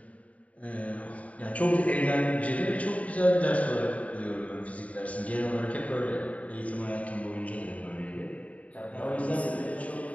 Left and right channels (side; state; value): right; late; 0.068 ms